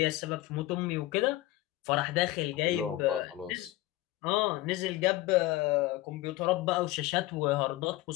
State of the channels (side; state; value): right; quieter; 16.8 dB